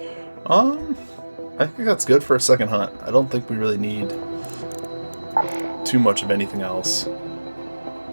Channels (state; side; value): inverted; both; correlation -1.00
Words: I think that's good for a second hunt. I don't think we really need too much of anything else.